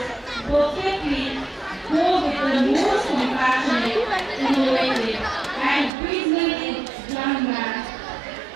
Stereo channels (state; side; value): drops out; left; at 5.9 s